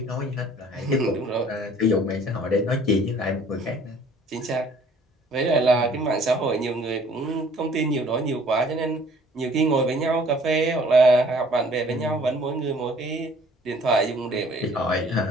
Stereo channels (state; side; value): normal; both; correlation 0.55